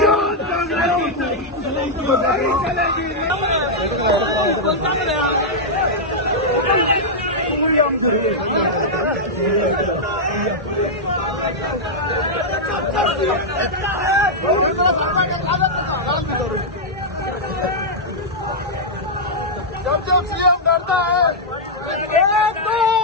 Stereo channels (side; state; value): both; normal; correlation -0.06